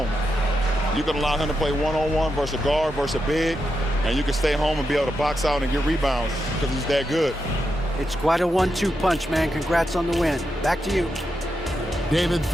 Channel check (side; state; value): both; normal; correlation 0.86